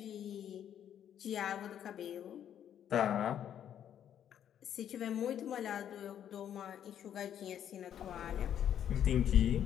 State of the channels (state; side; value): quieter; right; 9.8 dB